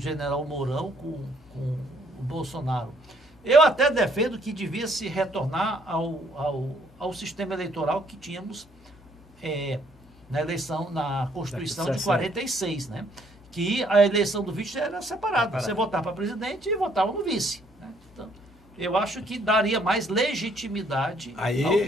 Mourão com o Bolsonaro. Eu até defendo que devia se retornar ao sistema eleitoral que tínhamos na Constituição de 46, né? Que a eleição do vice era separada. Você votava para presidente e votava no vice. Né? Então, eu acho que daria mais legitimidade ao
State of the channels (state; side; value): normal; both; correlation 0.66